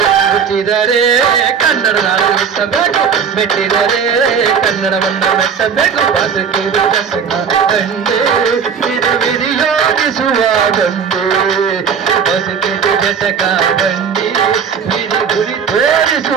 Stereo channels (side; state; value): left; quieter; 6.8 dB